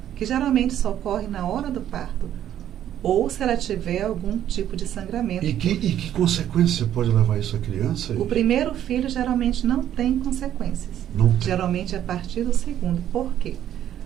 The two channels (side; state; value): left; quieter; 11.0 dB